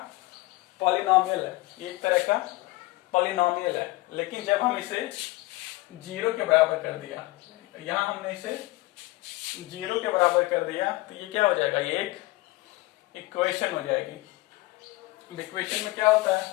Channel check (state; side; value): quieter; right; 20.4 dB